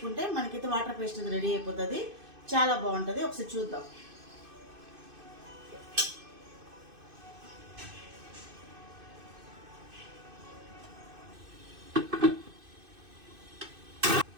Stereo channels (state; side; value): late; left; 2.6 ms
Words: మనకైతే వాటర్ పేస్ట్ రెడీ అయిపోతుంది. చాలా బాగుంటుంది. ఒకసారి చూద్దాం.